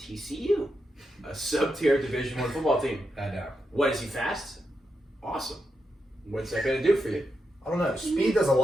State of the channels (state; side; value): normal; both; correlation 0.85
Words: a sub-tier Division I football team. I know. What, is he fast? Awesome. What's that going to do for you? I don't know. Speed does a